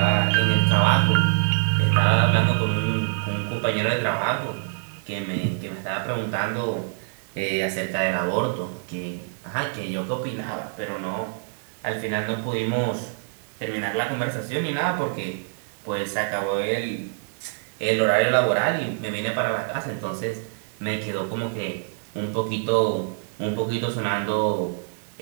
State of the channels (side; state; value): left; silent; digital silence